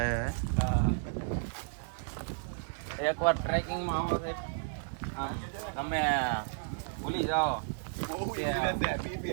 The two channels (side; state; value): left; silent; 56 dB below the other